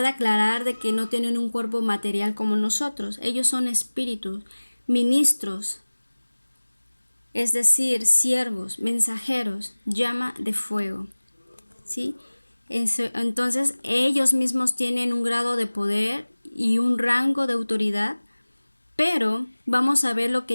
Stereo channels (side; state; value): both; inverted; correlation -1.00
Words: aclarar de que no tienen un cuerpo material como nosotros. Ellos son espíritus, ministros, es decir, siervos, mensajeros, llama de fuego, ¿sí? Entonces ellos mismos tienen un grado de poder y un rango de autoridad, pero vamos a ver lo